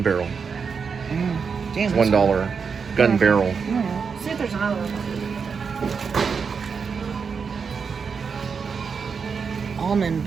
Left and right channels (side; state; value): left; quieter; 5.8 dB